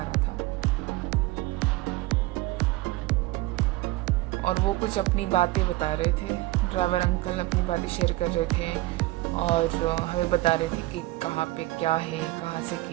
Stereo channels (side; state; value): left; quieter; 19.1 dB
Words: रहा था। और वो कुछ अपनी बातें बता रहे थे, ड्राइवर अंकल अपनी बातें शेयर कर रहे थे और हमें बता रहे थे कि कहाँ पे क्या है, कहाँ से